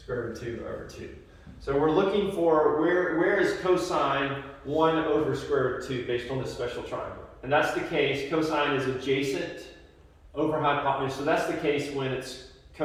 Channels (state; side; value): identical; both; correlation 1.00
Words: root of 2 over 2. So we're looking for where is cosine 1 over square root of 2 based on this special triangle. And that's the case, cosine is adjacent over hypotenuse. So that's the case when it's